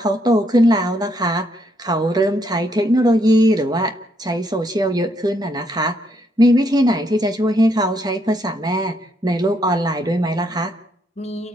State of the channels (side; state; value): both; normal; correlation 0.74